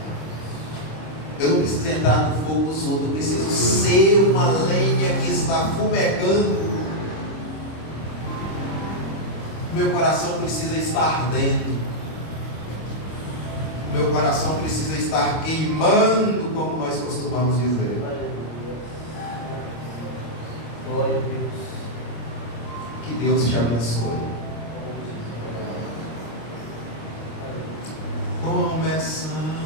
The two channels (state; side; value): late; right; 26 ms